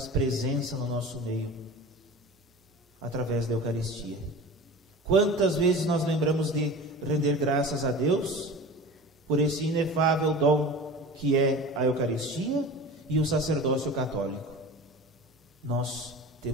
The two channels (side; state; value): both; normal; correlation 0.35